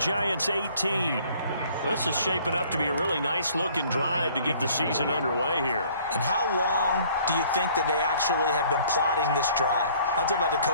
18. This is shaping up to be a really nice-looking drive to get the season underway here. And how long do you think that they actually have been plotting this drive? I'm talking about the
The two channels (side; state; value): both; inverted; correlation -0.57